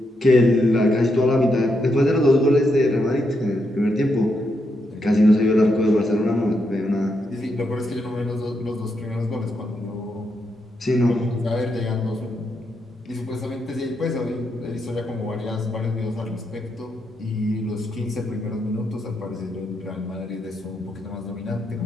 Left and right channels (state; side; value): normal; both; correlation 0.81